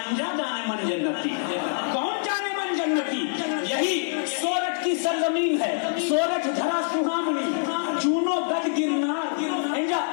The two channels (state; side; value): silent; right; 62 dB below the other